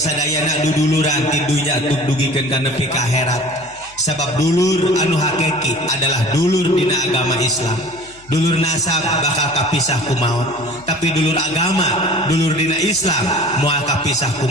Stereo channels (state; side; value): noise; left; hum, 26 dB below the sound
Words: duduluran ti dunya tug dugikeun ka nepi ka akhirat. Sabab dulur anu hakiki adalah dulur dina agama Islam. Dulur nasab bakal kapisah ku maut, tapi dulur agama, dulur dina Islam moal kapisah ku